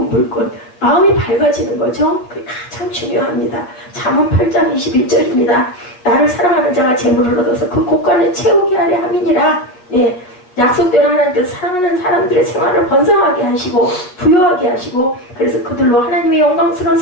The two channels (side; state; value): right; late; 8.2 ms